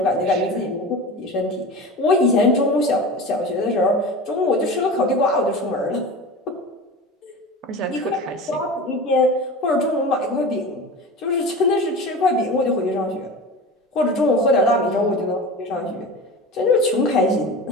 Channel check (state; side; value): normal; both; correlation 0.32